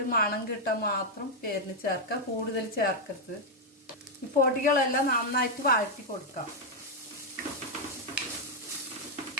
മണം കിട്ടാൻ മാത്രം പേരിന് ചേർക്കാം, കൂടുതൽ ചേർക്കരുത്. ഈ പൊടികളെല്ലാം നന്നായിട്ട് വഴറ്റി കൊടുക്കാം.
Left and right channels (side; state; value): both; normal; correlation 0.00